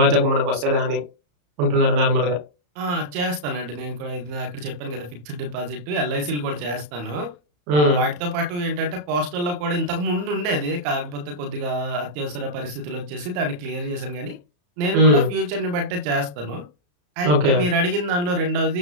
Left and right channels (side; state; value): left; late; 34 ms